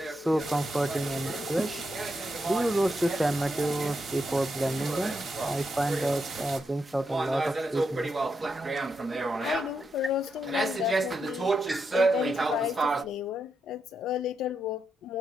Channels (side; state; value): both; normal; correlation 0.83